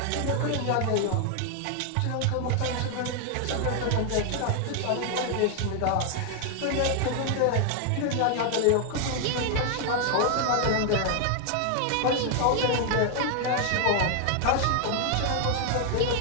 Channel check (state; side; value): different; both; correlation 0.00